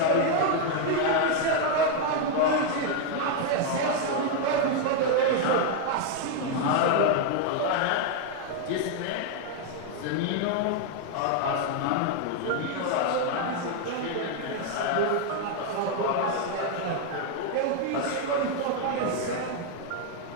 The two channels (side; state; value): both; different; correlation 0.00